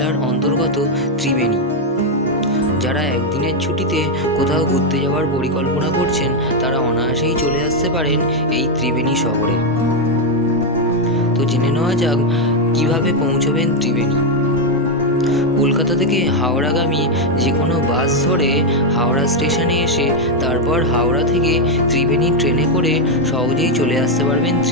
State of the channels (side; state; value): both; normal; correlation 0.03